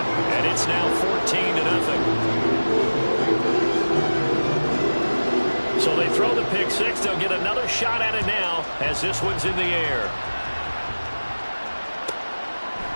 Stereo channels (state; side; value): inverted; both; correlation -1.00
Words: and it's now 14-0. So they throw the pick six. They'll get another shot at it now as this one's in the air.